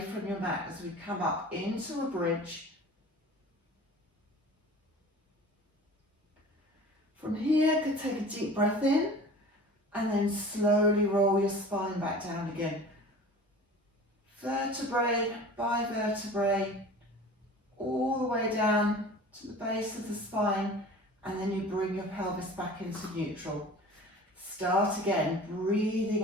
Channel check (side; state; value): both; normal; correlation 0.41